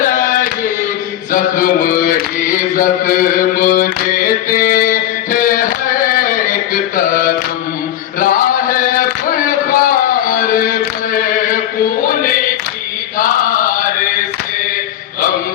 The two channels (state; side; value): quieter; right; 12.0 dB